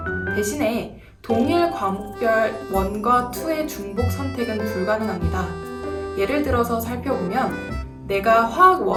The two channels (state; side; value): identical; both; correlation 1.00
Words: 대신에 동일 과목별 1과 2의 중복 선택은 불가능합니다. 예를 들어서 살펴보면 내가 화학